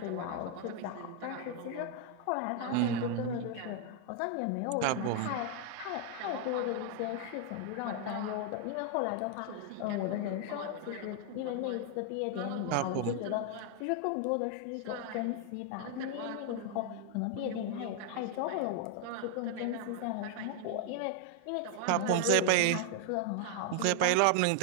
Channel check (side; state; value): both; different; correlation 0.00